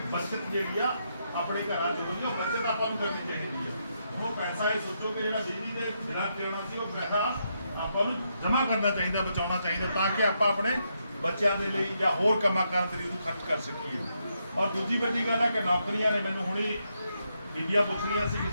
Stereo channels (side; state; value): both; inverted; correlation -0.80